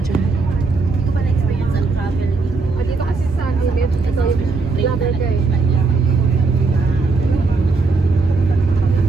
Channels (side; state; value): left; quieter; 3.9 dB